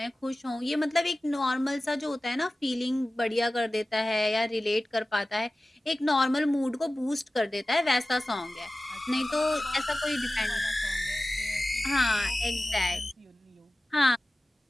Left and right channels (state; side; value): normal; both; correlation 0.96